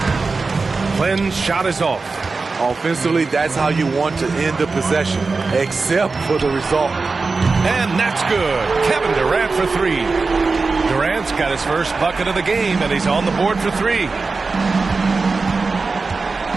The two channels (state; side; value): quieter; left; 4.1 dB